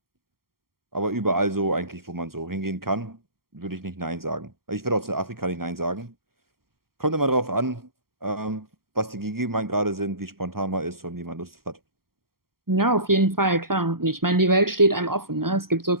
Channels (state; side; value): late; left; 0.93 ms